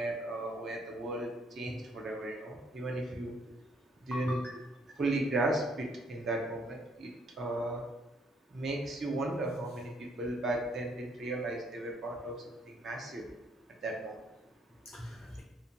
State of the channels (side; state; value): both; normal; correlation 0.67